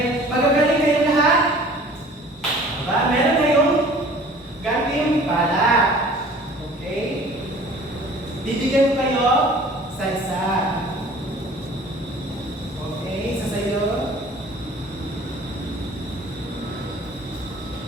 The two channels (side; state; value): both; normal; correlation 0.48